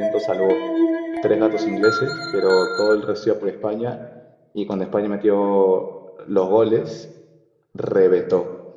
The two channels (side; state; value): both; identical; correlation 1.00